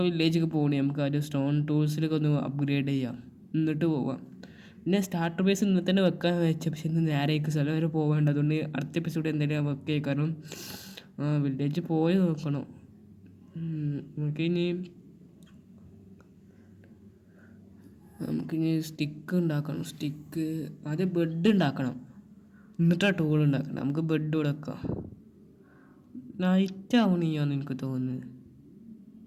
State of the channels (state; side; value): identical; both; correlation 1.00